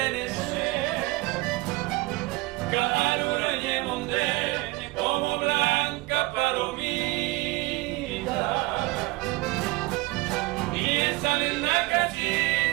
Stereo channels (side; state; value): left; quieter; 21.8 dB